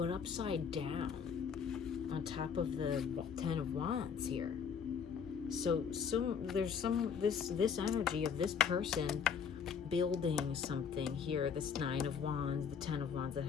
upside down on top of the 10 of Wands here. So there's this energy of this person building something here. This 9 of Wands, the 10 of Wands that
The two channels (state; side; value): quieter; right; 6.7 dB